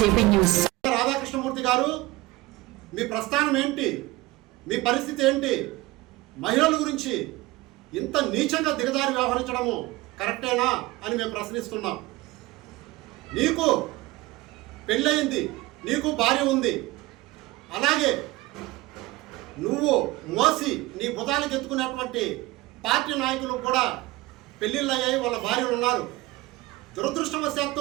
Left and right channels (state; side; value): quieter; left; 19.9 dB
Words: news. Radhakrishnamurthy గారు, మీ ప్రస్థానం ఏంటి? మీ పరిస్థితి ఏంటి? మహిళల గురించి ఇంత నీచంగా దిగజారి వ్యవహరించడము కరెక్టేనా అని మేము ప్రశ్నిస్తున్నాం. నీకు పెళ్ళయింది, నీకు భార్య ఉంది, అలాగే నువ్వు మోసి నీ భుజాలకు ఎత్తుకునేటువంటి పార్టీ నాయకులు కూడా పెళ్ళిళ్ళు అయ్యాయి, వాళ్ళ భార్యలు ఉన్నారు.